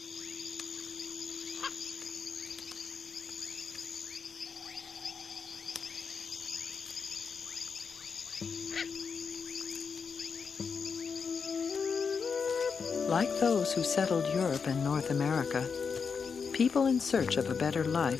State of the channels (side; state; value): right; quieter; 5.7 dB